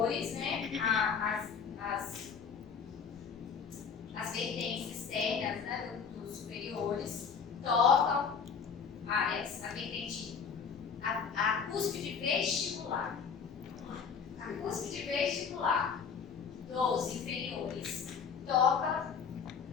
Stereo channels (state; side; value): quieter; right; 6.3 dB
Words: né, as vertentes externas, né, dos superiores tocam a vertente, a cúspide vestibular. A cúspide vestibular dos inferiores toca